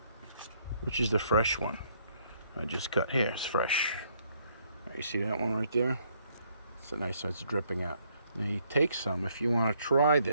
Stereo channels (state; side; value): inverted; both; correlation -0.69